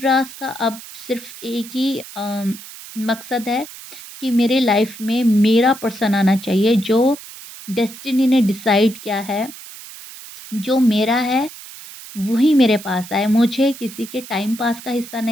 का अब सिर्फ़ एक ही मकसद है कि मेरे लाइफ में मेरा पर्सन आना चाहिए, जो डेस्टिनी ने डिसाइड किया है, जो मेरा है वही मेरे पास आए। मुझे किसी के टाइम पास का हिस्सा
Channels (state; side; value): noise; right; hiss, 15 dB below the sound